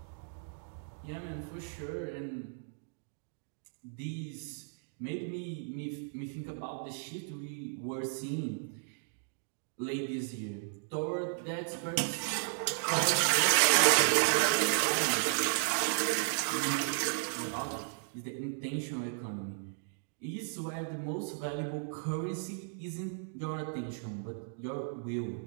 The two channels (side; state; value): left; silent; digital silence